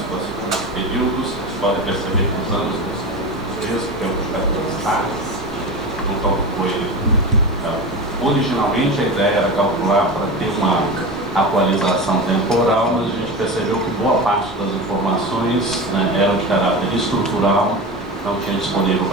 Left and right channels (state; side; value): normal; both; correlation 0.26